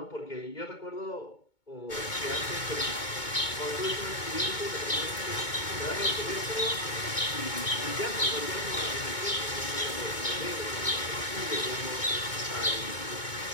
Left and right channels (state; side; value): late; right; 2.2 ms